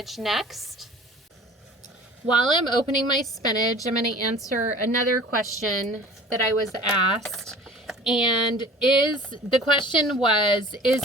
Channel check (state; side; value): normal; both; correlation 0.44